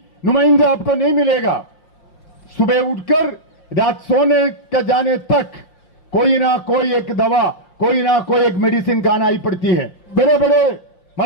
नुमाइंदा आपको नहीं मिलेगा, सुबह उठकर रात सोने का जाने तक कोई ना कोई एक दवा, कोई ना कोई एक मेडिसिन खाना ही पड़ती है। बड़े बड़े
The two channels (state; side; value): late; right; 5.7 ms